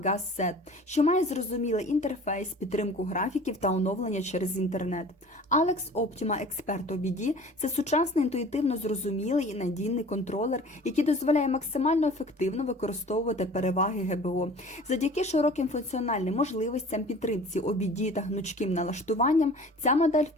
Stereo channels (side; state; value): both; normal; correlation 0.44